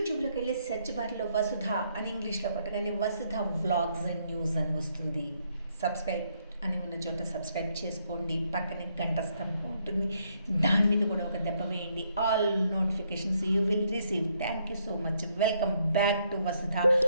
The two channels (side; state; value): both; inverted; correlation -0.73